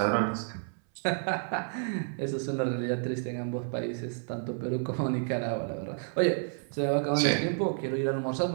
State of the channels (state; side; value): silent; left; 58 dB below the other